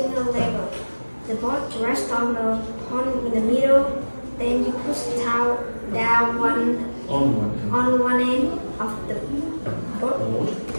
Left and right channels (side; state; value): both; inverted; correlation -1.00